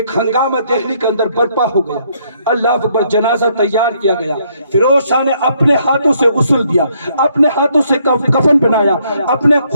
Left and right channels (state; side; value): inverted; both; correlation -0.70